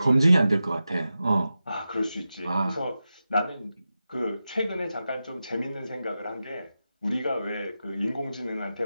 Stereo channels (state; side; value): inverted; both; correlation -0.92